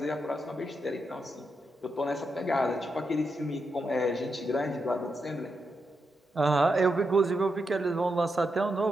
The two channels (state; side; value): normal; both; correlation 0.84